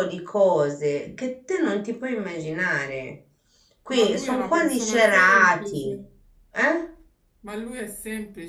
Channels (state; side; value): identical; both; correlation 1.00